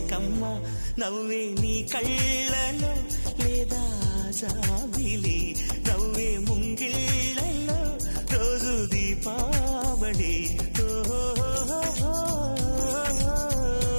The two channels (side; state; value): both; inverted; correlation -1.00